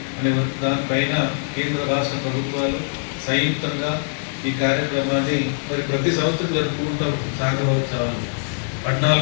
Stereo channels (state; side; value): silent; right; digital silence